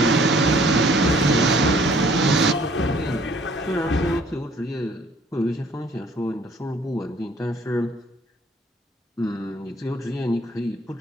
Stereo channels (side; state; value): both; normal; correlation 0.58